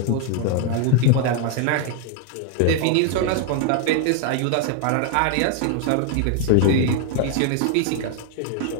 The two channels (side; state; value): both; different; correlation 0.00